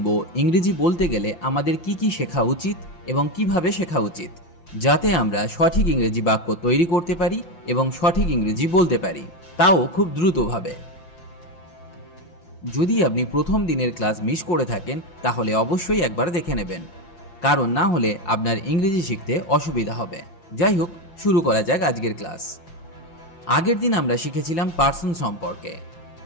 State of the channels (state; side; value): late; right; 5.9 ms